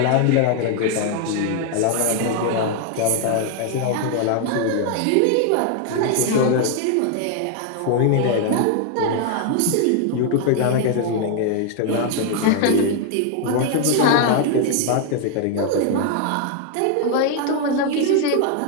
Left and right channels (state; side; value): different; both; correlation 0.00